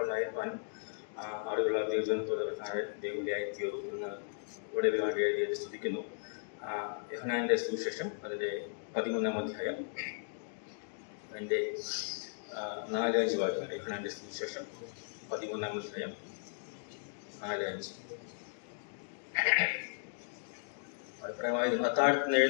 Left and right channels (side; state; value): right; silent; digital silence